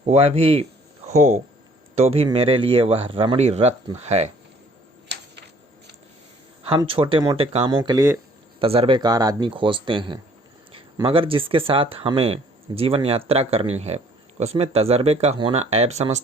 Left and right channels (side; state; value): both; normal; correlation 0.58